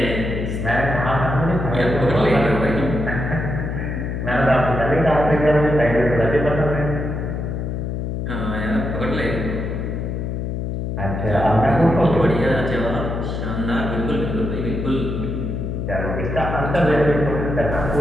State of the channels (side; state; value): left; noise; hum, 3 dB below the sound